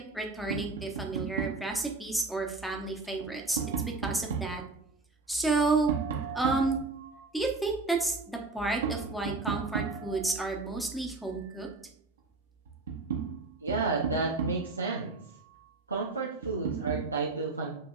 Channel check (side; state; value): left; quieter; 3.6 dB